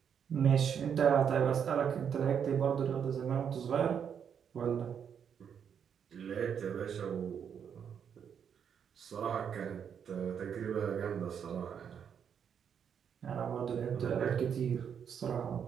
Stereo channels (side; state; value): left; quieter; 7.8 dB